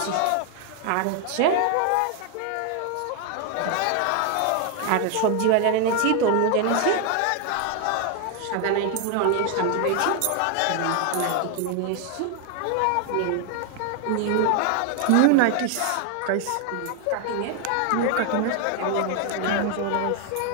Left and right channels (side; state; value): both; different; correlation 0.00